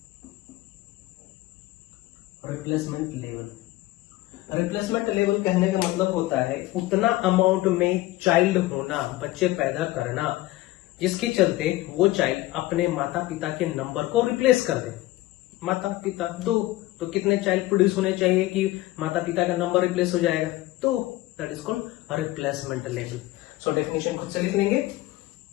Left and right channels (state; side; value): quieter; right; 17.6 dB